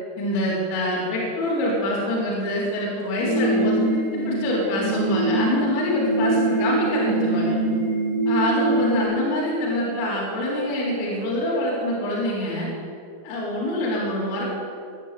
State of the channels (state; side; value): late; right; 35 ms